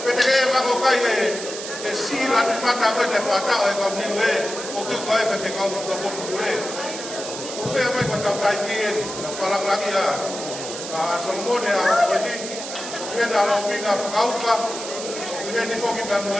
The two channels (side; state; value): right; noise; hiss, 8 dB below the sound